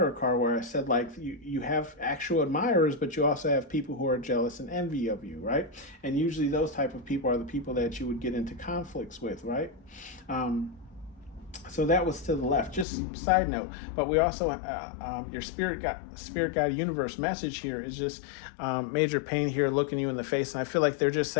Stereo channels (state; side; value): drops out; right; at 12.9 s